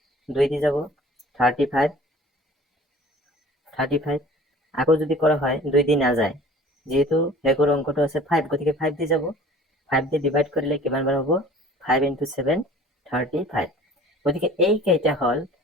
2 দি যাব 35, আকৌ যদি কৰা হয় 2 দি নাযায়, যেহেতু শেষৰ অংকটো আছে 5, গতিকে 5 দি যাব, 5 দি ডিভাইড কৰিলে কিমান বাৰ হ'ব? 5 × 7 35। গতিকে এই কেইটা হ'ল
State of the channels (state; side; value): normal; both; correlation 0.47